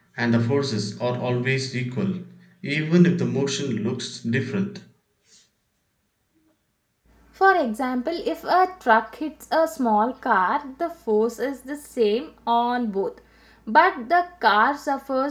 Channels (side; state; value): both; identical; correlation 1.00